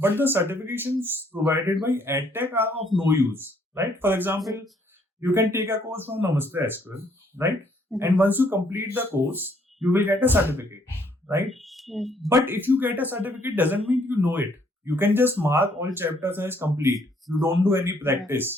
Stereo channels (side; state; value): both; normal; correlation 0.66